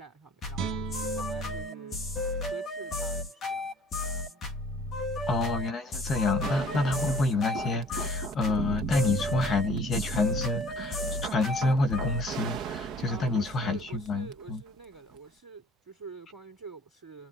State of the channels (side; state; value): both; normal; correlation 0.53